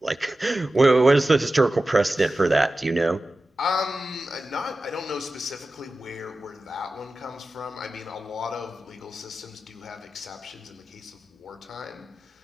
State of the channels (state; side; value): normal; both; correlation 0.94